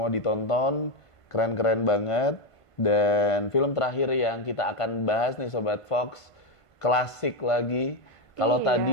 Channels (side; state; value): right; late; 1.5 ms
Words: ditonton, keren-keren banget. Dan film terakhir yang kita akan bahas nih Sobat Fox, klasik lagi. Kalau